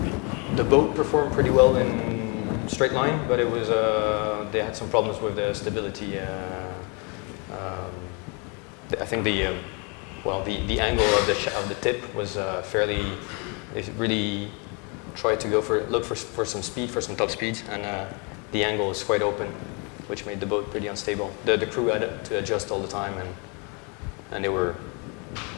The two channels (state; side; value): quieter; right; 33.1 dB